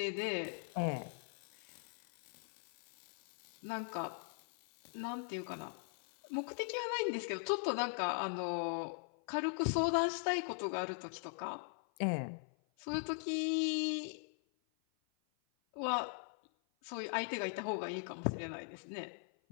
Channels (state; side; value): silent; right; 51 dB below the other